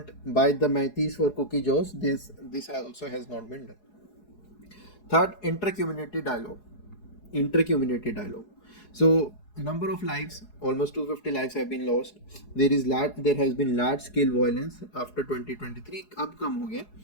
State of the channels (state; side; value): late; right; 4.8 ms